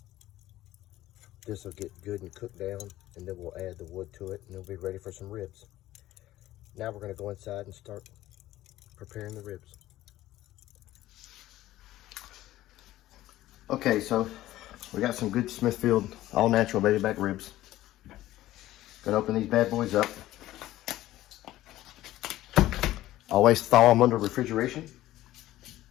this will get good and cooked down, and then we'll add the wood to it, and it'll be ready for some ribs. Now we're going to go inside and start preparing the ribs. Okay, so we got some good Smithfield all natural baby back ribs. Gonna open these bad boys up. Always thaw them under refrigeration.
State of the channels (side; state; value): right; quieter; 15.1 dB